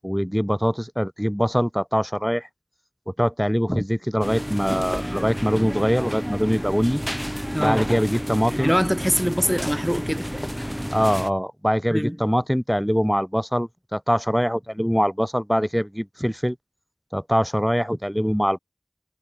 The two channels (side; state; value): both; identical; correlation 1.00